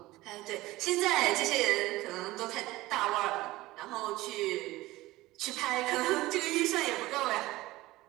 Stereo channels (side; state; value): left; quieter; 18.4 dB